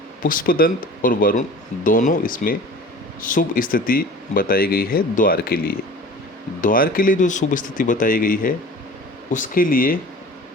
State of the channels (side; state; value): both; normal; correlation 0.42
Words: पुष्पदंत और वरुण दोनों इसमें शुभ स्थिति बताई गई है द्वार के लिए। द्वार के लिए जो शुभ स्थिति बताई गई है उसके लिए